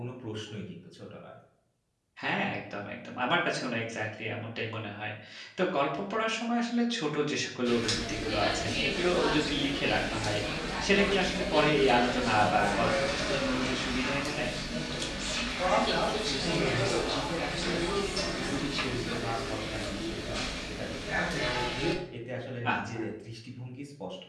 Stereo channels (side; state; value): both; identical; correlation 1.00